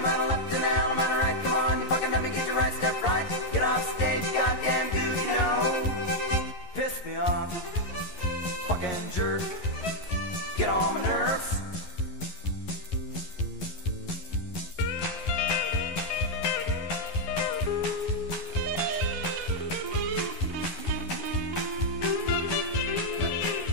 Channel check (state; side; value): late; right; 11 ms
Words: left and hell, man, right. Come on, you fucking let me get your right step right. Get off stage, goddamn goose, you know. Piss me off, fucking jerk. Get on my nerves.